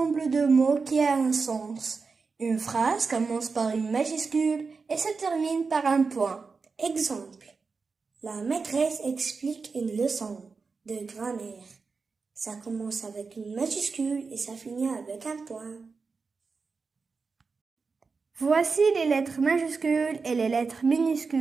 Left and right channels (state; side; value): quieter; left; 4.7 dB